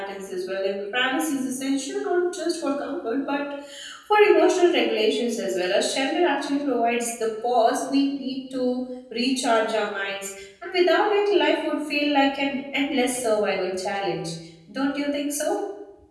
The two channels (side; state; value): both; identical; correlation 1.00